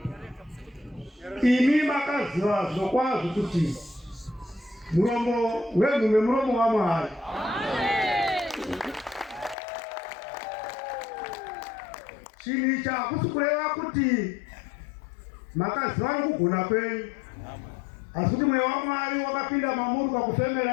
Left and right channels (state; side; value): drops out; right; at 9.6 s